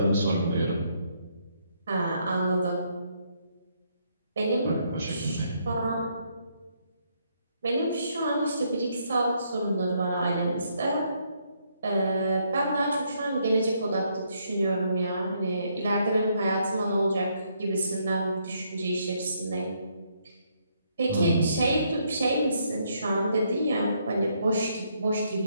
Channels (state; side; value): inverted; both; correlation -0.73